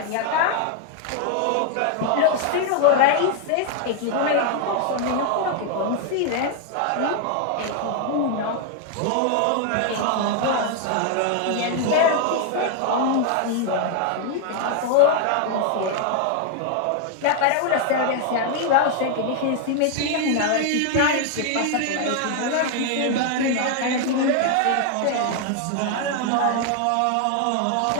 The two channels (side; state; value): both; different; correlation 0.00